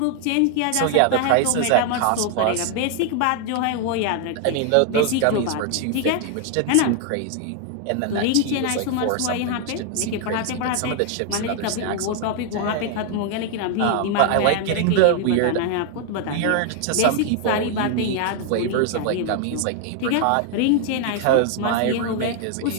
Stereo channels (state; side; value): different; both; correlation 0.00